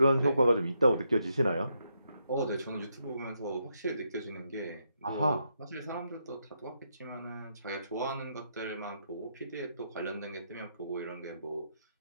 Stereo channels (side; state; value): both; inverted; correlation -0.79